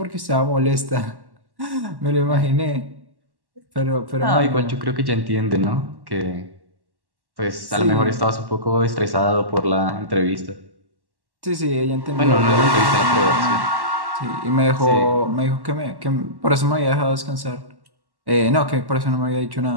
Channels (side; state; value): left; late; 1.1 ms